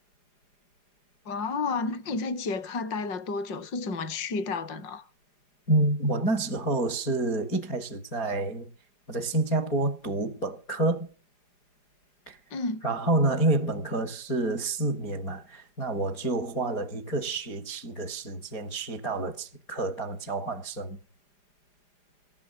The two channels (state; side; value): late; right; 4.9 ms